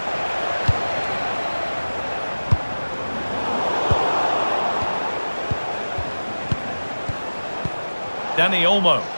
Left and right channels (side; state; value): both; inverted; correlation -1.00